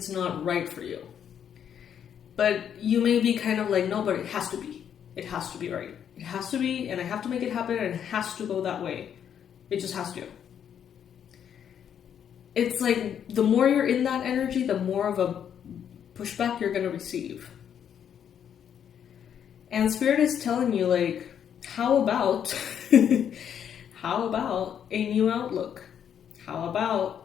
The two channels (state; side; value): quieter; right; 8.8 dB